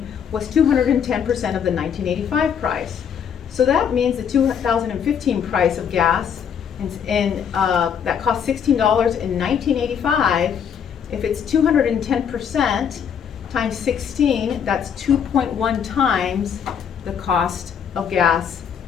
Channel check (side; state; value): right; quieter; 7.8 dB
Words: was 210% of the 1985 price. So that means the 2015 price of gas that cost $16 in 1985, if it's 210% times 16, that's 2.1 times the cost of gas